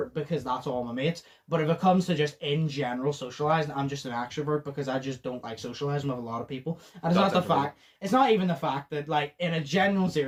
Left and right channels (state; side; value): identical; both; correlation 1.00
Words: because that's all my mates. But if it comes to just, in general, socialising, I'm just an extrovert, because I just don't like socialising with a lot of people. And it's not even the fact that, like, in a general